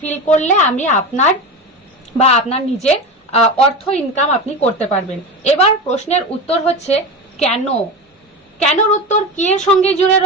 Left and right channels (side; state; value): both; normal; correlation 0.24